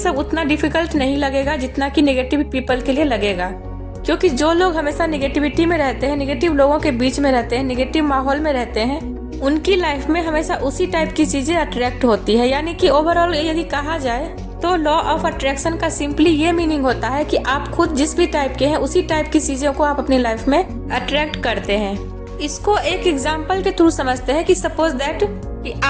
उतना डिफिकल्ट नहीं लगेगा जितना कि नेगेटिव पीपल के लिए लगेगा। क्योंकि जो लोग हमेशा नेगेटिविटी में रहते हैं, नेगेटिव लोगों के बीच में रहते हैं, नेगेटिव माहौल में रहते हैं, उनकी लाइफ में हमेशा उसी टाइप की चीजें अट्रैक्ट होती है। यानी कि ओवरऑल यदि कहा जाए तो लॉ ऑफ अट्रैक्शन का सिंपली ये मीनिंग होता है कि आप खुद जिस भी टाइप के हैं उसी टाइप की चीजों को आप अपनी लाइफ में अट्रैक्ट करते हैं। इसको एक एग्जांपल के थ्रू समझते हैं कि सपोज दैट कि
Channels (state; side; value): identical; both; correlation 1.00